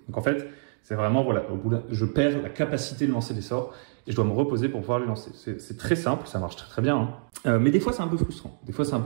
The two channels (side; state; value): left; silent; digital silence